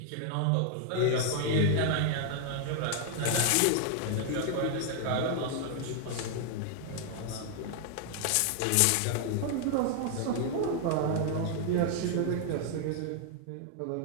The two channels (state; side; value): different; both; correlation 0.00